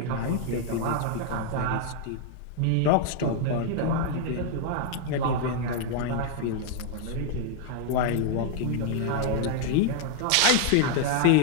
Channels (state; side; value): different; both; correlation -0.01